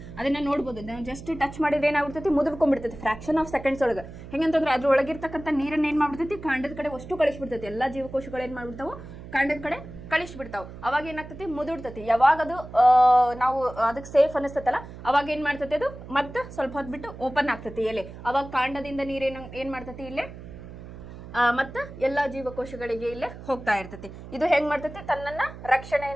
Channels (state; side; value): noise; right; hum, 14 dB below the sound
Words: ಅದನ್ನ ನೋಡ್ಬೋದು. ನಾವು ಜಸ್ಟ್ ಟಚ್ ಮಾಡಿದ್ರೆ ಏನಾಗ್ಬಿಡ್ತೈತಿ, ಮುದುರ್ಕೊಂಡ್ಬಿಡ್ತೈತಿ ಫ್ರಾಕ್ಷನ್ ಆಫ್ ಸೆಕೆಂಡ್ಸ್ ಒಳಗೆ. ಹೆಂಗಂತಂದ್ರೆ ಅದ್ರ ಒಳಗಿರ್ತಕ್ಕಂಥ ನೀರನ್ನ ಏನು ಮಾಡ್ಬಿಡ್ತೈತಿ, ಕಾಂಡದ ಕಡೆ ಅಷ್ಟು ಕಳಿಸ್ಬಿಡ್ತೈತಿ. ಎಲ್ಲ ಜೀವಕೋಶಗಳು ಏನು ಮಾಡ್ಬಿಡ್ತಾವೆ, ಕಾಂಡದ ಕಡೆ ಕಳಿಸ್ಬಿಡ್ತಾವೆ. ಅವಾಗ ಏನಾಗ್ತೈತಿ, ಮುದುಡ್ತೈತಿ. ಯಾವಾಗ ಅದು ನಾವು ಅದಕ್ಕೆ ಸೇಫ್ ಅನಿಸ್ತೈತಲ್ಲ, ಅವಾಗ ಏನು ಮಾಡ್ತೈತಿ, ಅದು ಮತ್ತೆ ಸ್ವಲ್ಪ ಹೊತ್ತು ಬಿಟ್ಟು ಓಪನ್ ಆಗ್ತೈತಿ ಎಲೆ. ಅವಾಗ ಕಾಂಡದಿಂದ ನೀರೇನು ಏನು ಮಾಡ್ತೈತಿ, ಇಲ್ಲೇ ಮತ್ತು ಎಲ್ಲ ಜೀವಕೋಶಗಳಿಗೆ ಇಲ್ಲೇ ಹೋಗ್ತಾ ಇರ್ತೈತಿ. ಇದು ಹೆಂಗ್ ಮಾಡ್ತೈತಿ, ತನ್ನನ್ನ